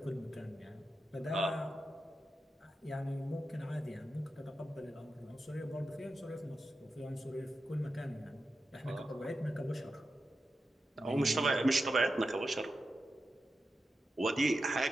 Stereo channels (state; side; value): normal; both; correlation 0.90